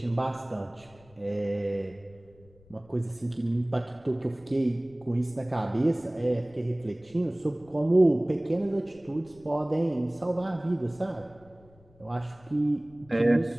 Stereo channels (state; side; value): noise; left; rumble, 27 dB below the sound